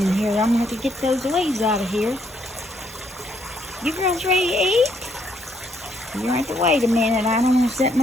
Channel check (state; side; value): normal; both; correlation 0.71